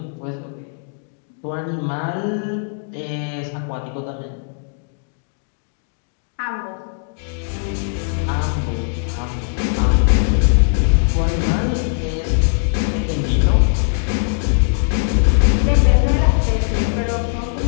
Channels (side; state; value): right; silent; digital silence